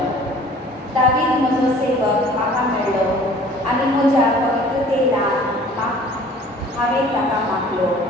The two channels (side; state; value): both; normal; correlation 0.50